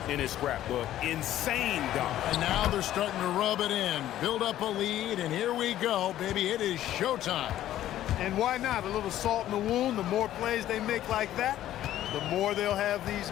in his scrapbook. Insane dunk. And now they're starting to rub it in. Build up a lead, and here we go, baby. It is showtime. And why not? A little salt in the wound. The more plays they make like that, the more they'll have these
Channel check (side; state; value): right; quieter; 12.9 dB